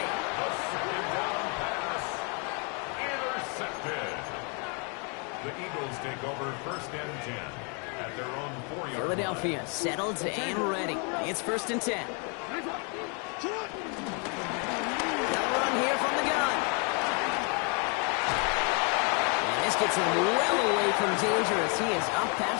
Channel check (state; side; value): quieter; right; 36.4 dB